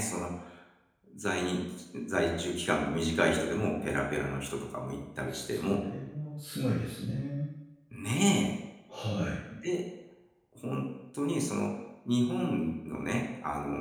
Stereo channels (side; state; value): both; identical; correlation 1.00